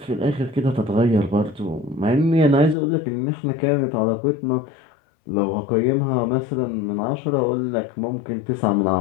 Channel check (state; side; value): drops out; right; at 2.8 s